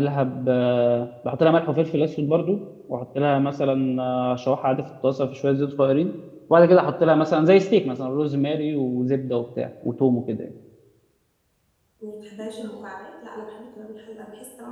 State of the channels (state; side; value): identical; both; correlation 1.00